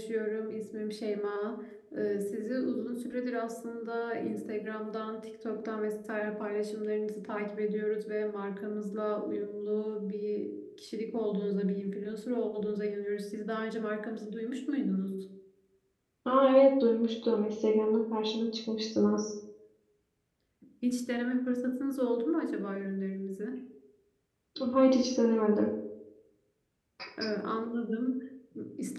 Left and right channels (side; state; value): both; identical; correlation 1.00